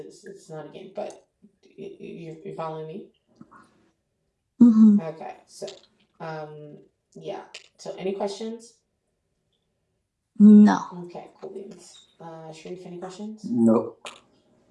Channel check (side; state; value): both; identical; correlation 1.00